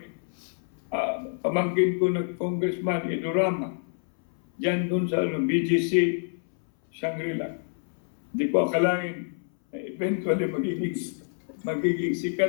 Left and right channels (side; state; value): right; silent; 60 dB below the other